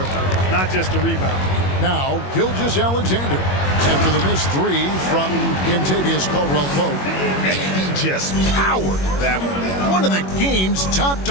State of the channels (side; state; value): right; late; 21 ms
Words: not just a rebounder. Now, Gilgeous-Alexander after the missed 3 from Kentavious Caldwell-Pope. He just powered that one down. One of the game's top